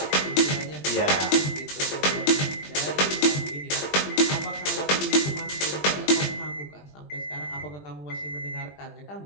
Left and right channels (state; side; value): late; right; 20 ms